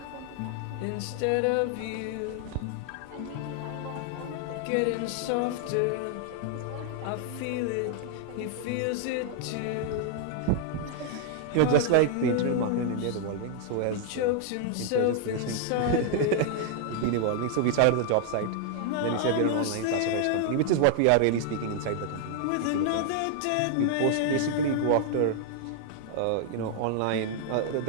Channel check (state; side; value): different; both; correlation 0.00